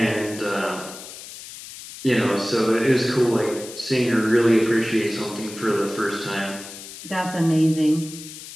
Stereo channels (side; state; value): left; noise; hiss, 14 dB below the sound